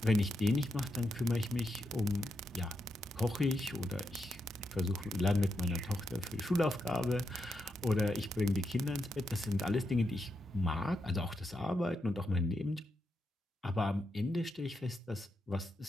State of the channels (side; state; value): both; normal; correlation 0.84